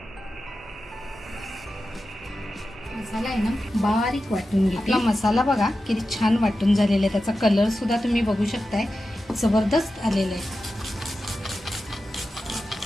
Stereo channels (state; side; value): normal; both; correlation 0.92